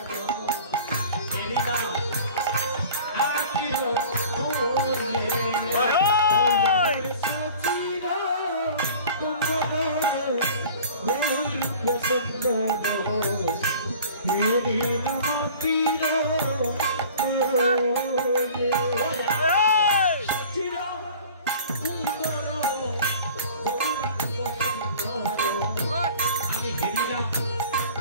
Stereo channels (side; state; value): both; inverted; correlation -0.44